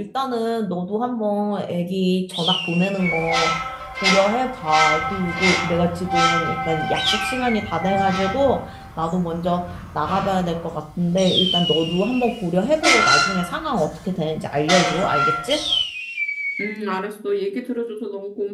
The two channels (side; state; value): both; identical; correlation 1.00